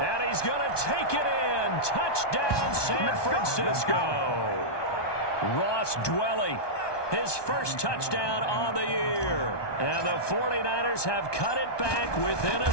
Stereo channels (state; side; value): late; right; 1.2 ms